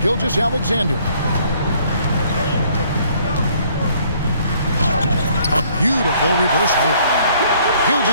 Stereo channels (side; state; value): both; inverted; correlation -0.62